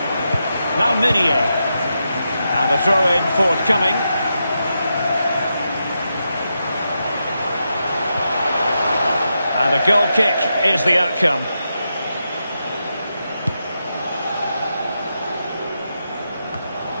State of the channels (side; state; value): both; inverted; correlation -0.86